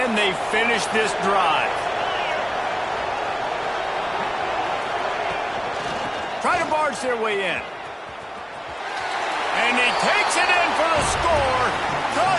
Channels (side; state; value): both; identical; correlation 1.00